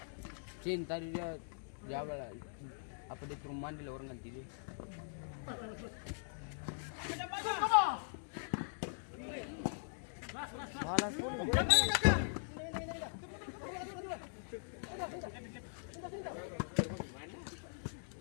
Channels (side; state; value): right; silent; digital silence